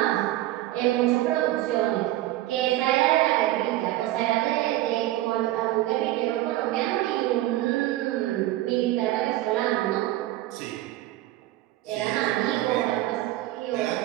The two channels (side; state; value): left; quieter; 15.8 dB